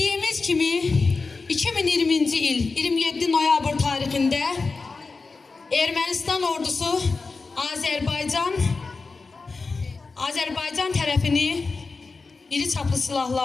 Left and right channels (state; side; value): quieter; right; 4.1 dB